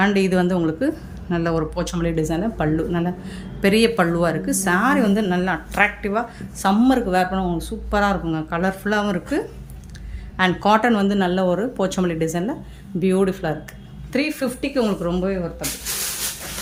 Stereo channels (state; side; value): identical; both; correlation 1.00